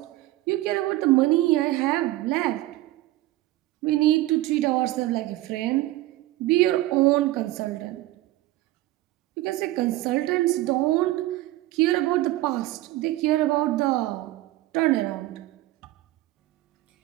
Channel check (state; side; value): quieter; left; 16.8 dB